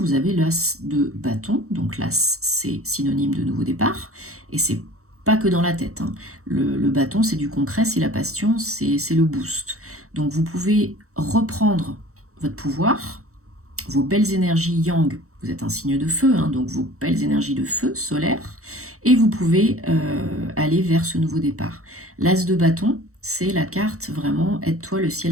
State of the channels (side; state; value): left; late; 0.64 ms